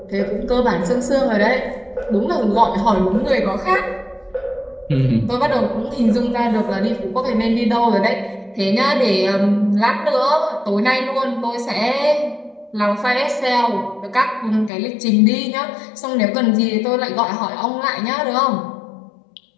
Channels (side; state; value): right; drops out; at 14.7 s